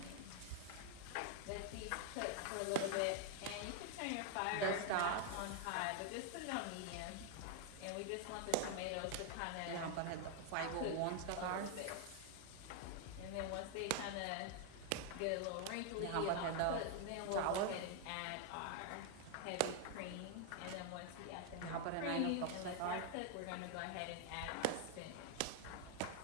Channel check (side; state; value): both; different; correlation 0.00